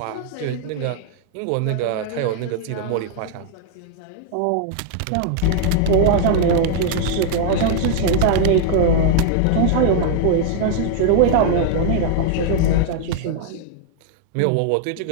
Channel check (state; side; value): different; both; correlation 0.00